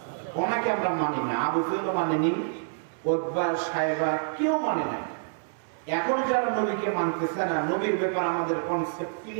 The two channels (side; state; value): left; silent; 60 dB below the other